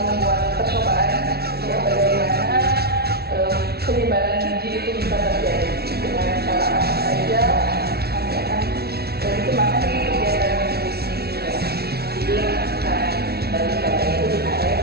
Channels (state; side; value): late; left; 0.46 ms